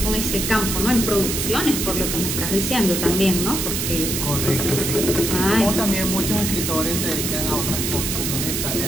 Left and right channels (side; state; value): right; noise; hiss, 1 dB below the sound